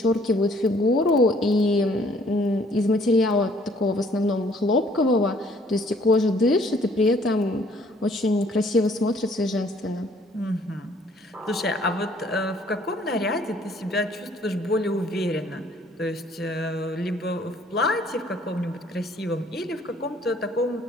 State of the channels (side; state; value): both; normal; correlation 0.60